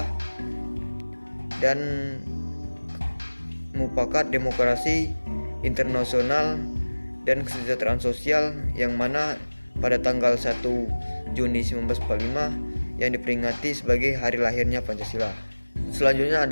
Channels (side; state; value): both; inverted; correlation -1.00